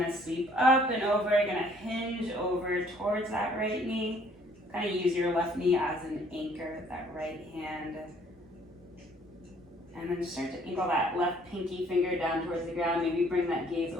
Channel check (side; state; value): right; noise; hum, 29 dB below the sound